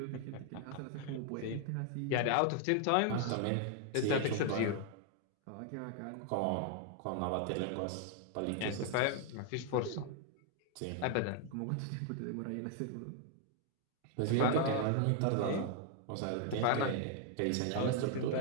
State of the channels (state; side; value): different; both; correlation 0.00